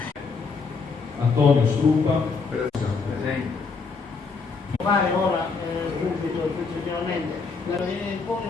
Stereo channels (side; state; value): right; quieter; 4.7 dB